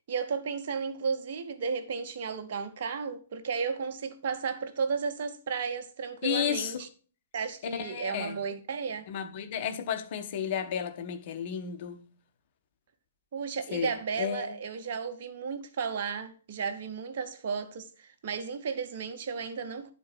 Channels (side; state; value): both; inverted; correlation -0.57